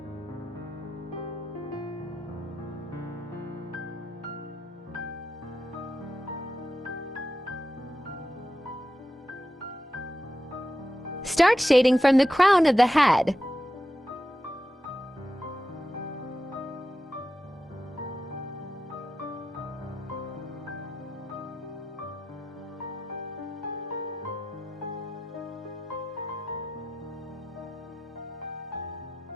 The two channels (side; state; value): both; normal; correlation 0.90